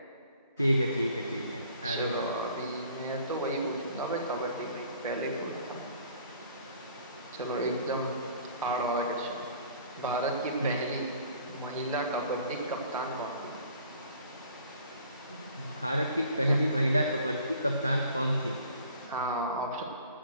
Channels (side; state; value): both; inverted; correlation -0.53